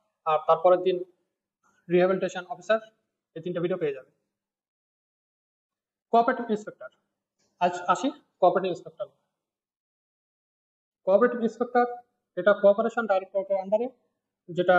আর তারপরের দিন রিহ্যাবিলিটেশন অফিসার, এই তিনটা ভিডিও পেয়ে যাবে। কোঅপারেটিভ ইন্সপেক্টর, আজ আসি কোঅপারেটিভ ইন্সপেক্টর। কোঅপারেটিভ ইন্সপেক্টর এটা কোঅপারেশন ডাইরেক্টরেটের আন্ডারে, যেটা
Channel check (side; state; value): both; identical; correlation 1.00